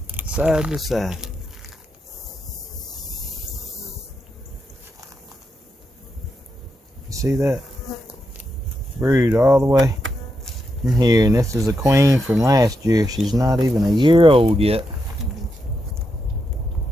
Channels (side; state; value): both; normal; correlation 0.84